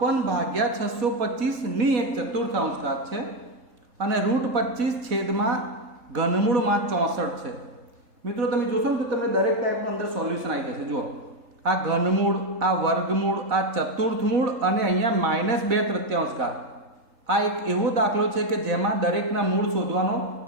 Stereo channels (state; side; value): late; left; 3.8 ms